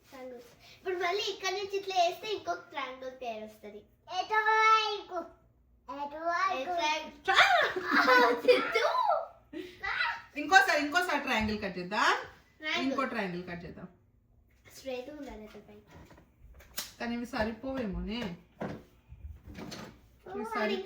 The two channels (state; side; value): identical; both; correlation 1.00